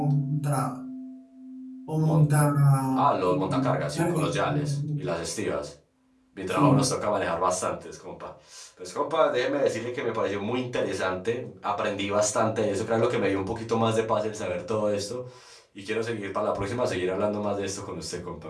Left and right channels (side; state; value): both; identical; correlation 1.00